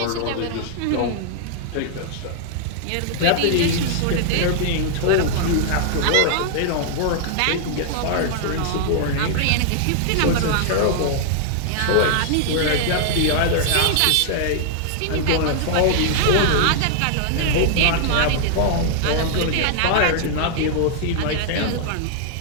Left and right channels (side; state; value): both; different; correlation -0.01